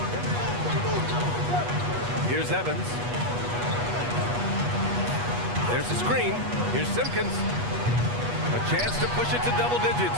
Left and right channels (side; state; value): left; late; 8.3 ms